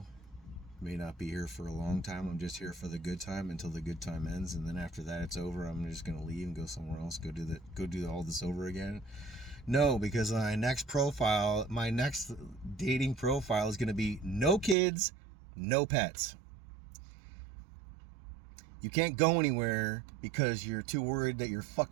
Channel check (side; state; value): left; drops out; at 14.8 s